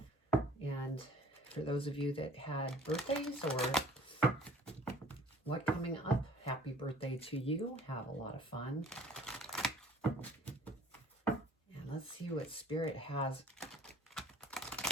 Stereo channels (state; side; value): normal; both; correlation 0.51